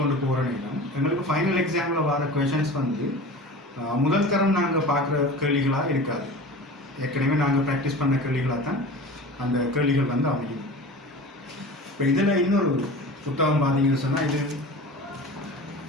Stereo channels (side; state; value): both; normal; correlation 0.36